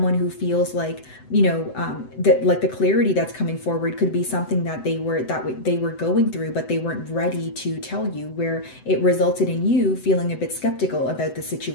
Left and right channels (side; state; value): right; late; 7.9 ms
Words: who feels like, that like the clarity that's coming forward could be something that they were going through, but they weren't ready to tell you, where it resulted in you feeling a bit skeptical about the